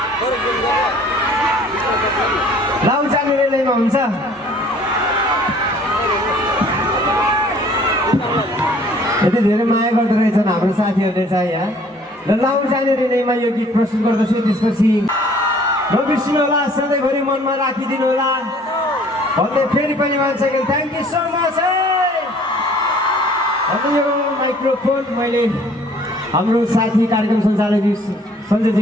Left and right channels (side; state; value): both; normal; correlation 0.55